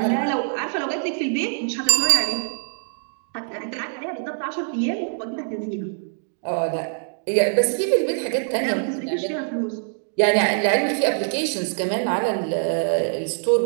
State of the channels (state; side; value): silent; left; digital silence